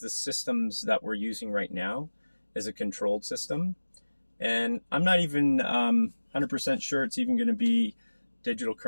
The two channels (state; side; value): inverted; both; correlation -1.00